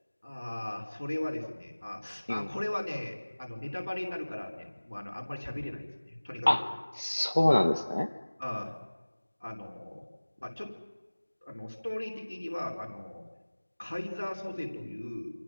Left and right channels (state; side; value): inverted; both; correlation -1.00